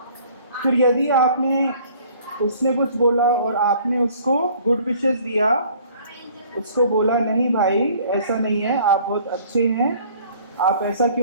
फिर यदि आपने उसने कुछ बोला और आपने उसको गुड विशेस दिया, उसको बोला नहीं भाई ऐसा नहीं है, आप बहुत अच्छे हैं, आप ऐसा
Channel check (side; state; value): both; inverted; correlation -0.55